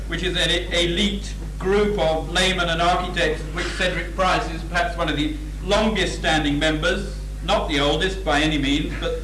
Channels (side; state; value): both; identical; correlation 1.00